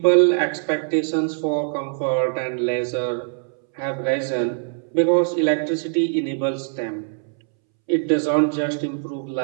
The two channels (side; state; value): left; silent; 64 dB below the other